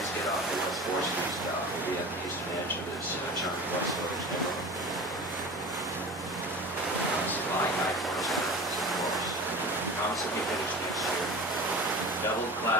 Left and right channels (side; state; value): both; normal; correlation 0.35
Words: get off the West 4th Street stop, we'll be at the eastern edge of this charming West Village neighborhood. Supplying high corners of course. Constantly finished next year. Double